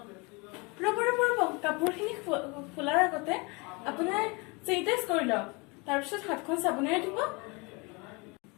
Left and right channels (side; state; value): right; quieter; 28.4 dB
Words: ৰ'ব ৰ'ব ৰ'ব, কাপোৰখিনি খোলাৰ আগতে আপোনাৰ চেনিটাইজ কৰি লওক। তাৰপিছত হাতখন চাবোনেৰে ধুব।